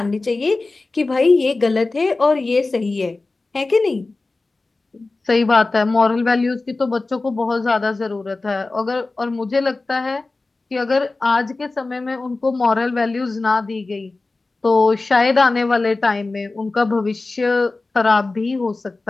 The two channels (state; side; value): quieter; right; 3.4 dB